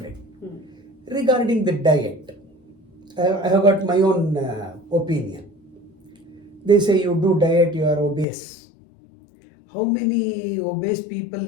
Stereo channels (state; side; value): drops out; right; at 8.2 s